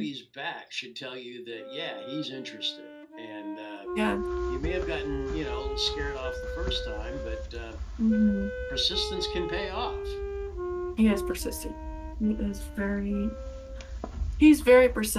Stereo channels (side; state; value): both; identical; correlation 1.00